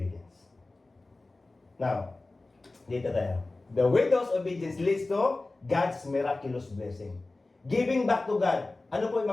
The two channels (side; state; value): right; quieter; 3.1 dB